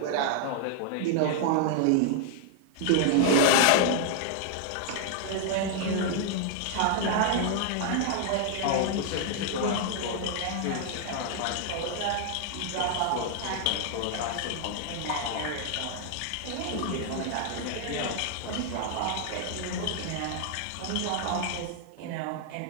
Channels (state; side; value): different; both; correlation 0.00